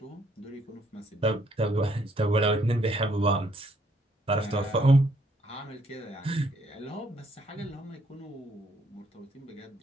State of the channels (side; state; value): both; normal; correlation 0.69